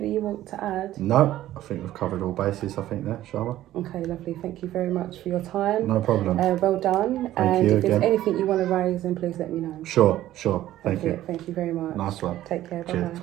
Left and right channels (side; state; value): left; quieter; 13.9 dB